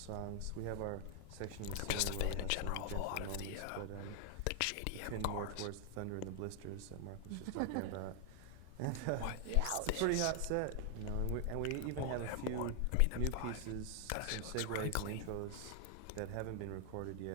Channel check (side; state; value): both; different; correlation 0.00